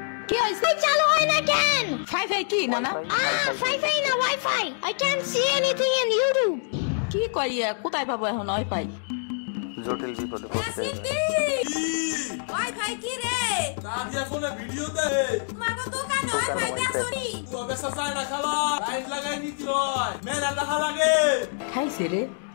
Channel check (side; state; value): right; silent; digital silence